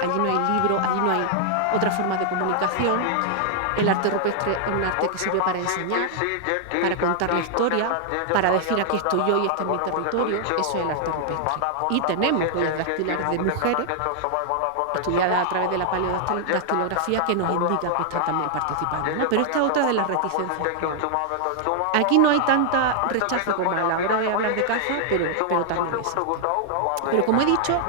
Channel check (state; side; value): different; both; correlation -0.01